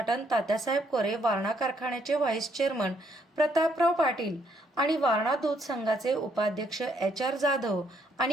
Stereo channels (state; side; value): normal; both; correlation 0.71